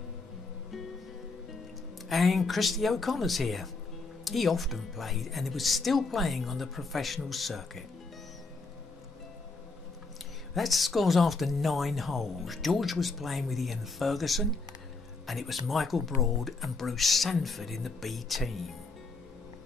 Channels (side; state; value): right; quieter; 3.8 dB